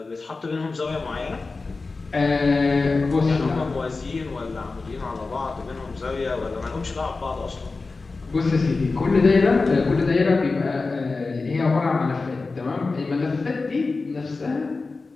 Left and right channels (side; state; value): right; quieter; 3.9 dB